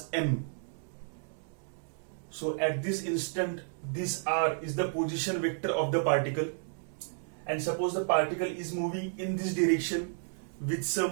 m. So at this instant, this r is the position vector of the particle, and suppose the particle is moving in this direction with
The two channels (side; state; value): left; silent; digital silence